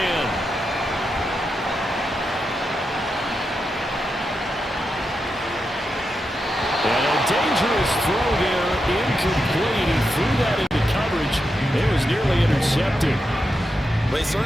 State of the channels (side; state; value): both; normal; correlation 0.87